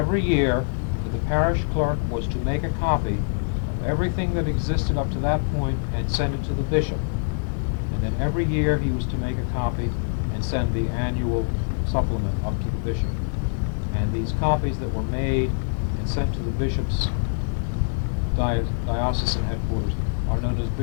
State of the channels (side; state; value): right; silent; digital silence